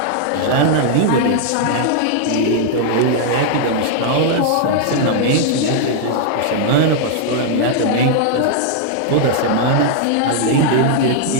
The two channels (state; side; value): different; both; correlation -0.01